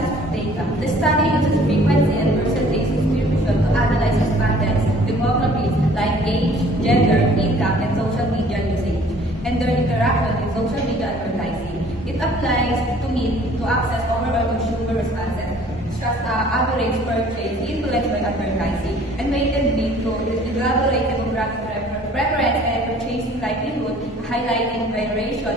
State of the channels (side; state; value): both; normal; correlation 0.54